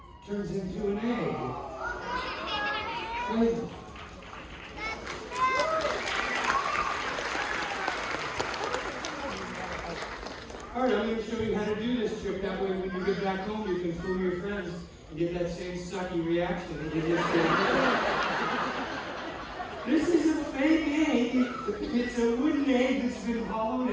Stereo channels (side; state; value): both; identical; correlation 1.00